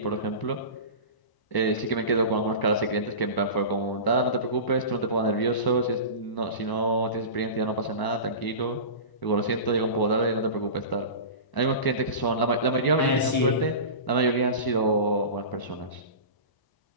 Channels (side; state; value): right; late; 1.0 ms